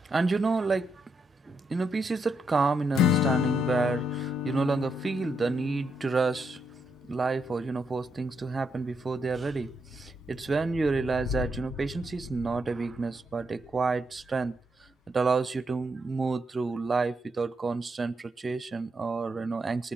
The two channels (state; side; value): normal; both; correlation 0.80